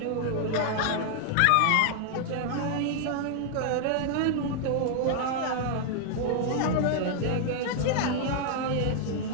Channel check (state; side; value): different; both; correlation 0.00